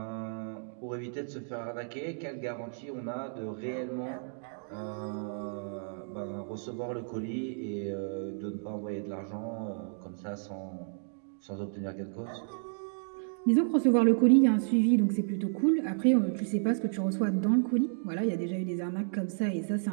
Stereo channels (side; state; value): left; silent; digital silence